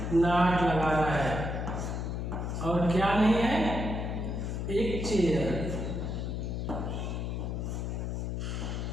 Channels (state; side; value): noise; left; hum, 3 dB below the sound